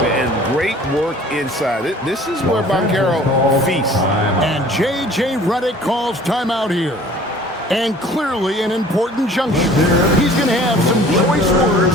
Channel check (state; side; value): normal; both; correlation 0.50